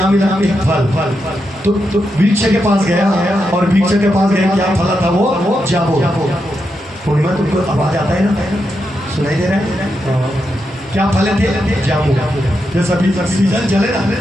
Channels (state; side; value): normal; both; correlation 0.85